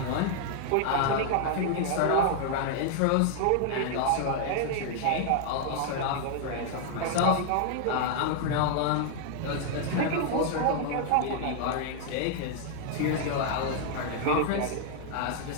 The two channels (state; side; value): different; both; correlation 0.00